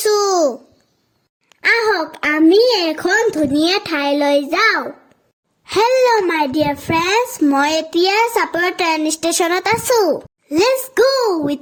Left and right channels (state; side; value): identical; both; correlation 1.00